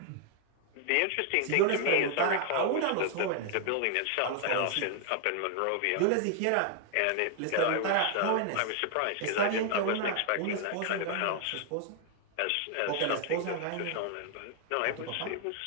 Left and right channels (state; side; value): different; both; correlation 0.00